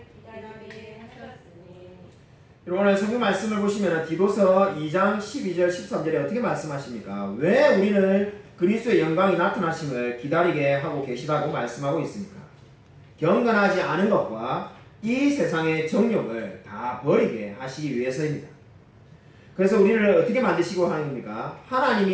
기다리게 하셨으니. 오늘 성경 말씀을 보시면 디도서 2장 12절 13절에 어떻게 말씀하십니까? 왜 우리를 그리스도의 영광이 나타나심을 기다리게 하고 계시다고 말씀하고 있습니까? 경건하지 않은 것과 이 세상의 정욕을 다 버리게 하시기 위해서입니다. 그래서 우리를 어떻게 만드시고 하는 겁니까?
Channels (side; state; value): both; identical; correlation 1.00